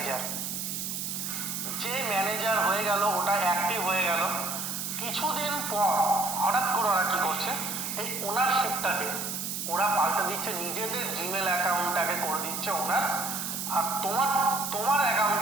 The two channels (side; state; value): right; noise; hiss, 4 dB below the sound